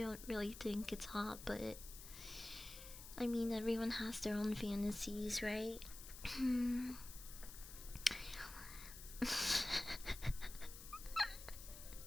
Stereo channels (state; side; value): noise; left; hiss, 13 dB below the sound